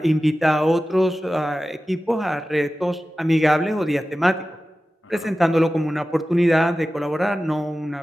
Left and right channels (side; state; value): both; normal; correlation 0.95